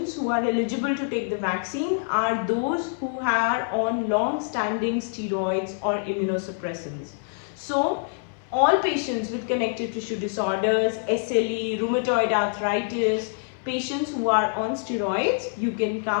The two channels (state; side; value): silent; right; 61 dB below the other